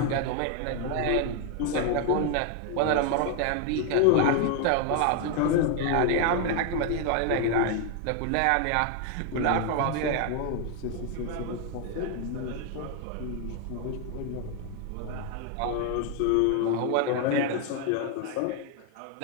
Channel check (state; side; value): different; both; correlation 0.00